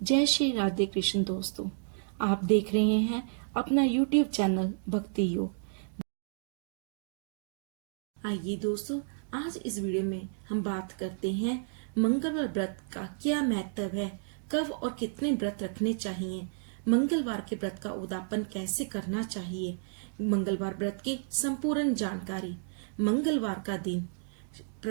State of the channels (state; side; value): silent; left; digital silence